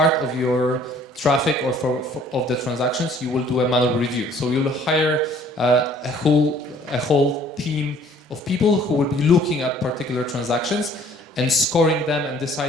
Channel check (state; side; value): normal; both; correlation 0.56